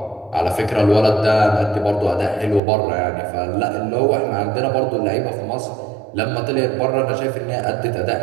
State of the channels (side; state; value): left; drops out; at 2.6 s